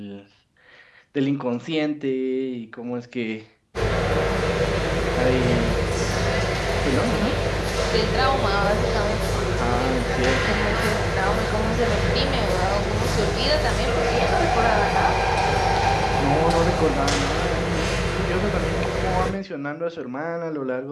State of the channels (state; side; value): identical; both; correlation 1.00